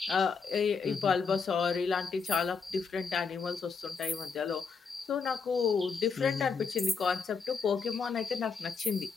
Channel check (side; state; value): right; quieter; 5.3 dB